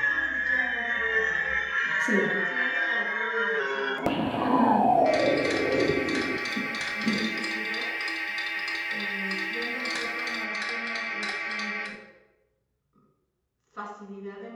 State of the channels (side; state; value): both; identical; correlation 1.00